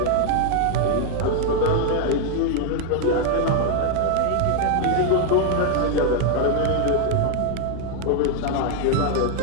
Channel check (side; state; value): both; different; correlation 0.00